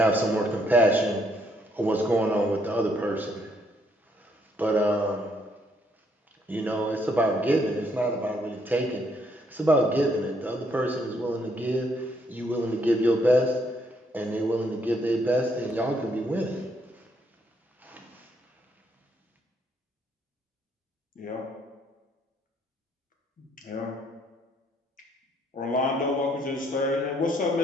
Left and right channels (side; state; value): both; normal; correlation 0.70